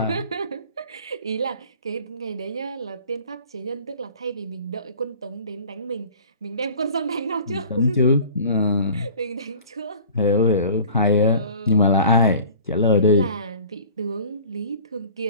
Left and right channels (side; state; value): both; inverted; correlation -0.46